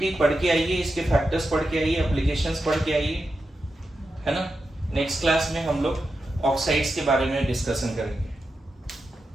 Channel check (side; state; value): both; normal; correlation 0.89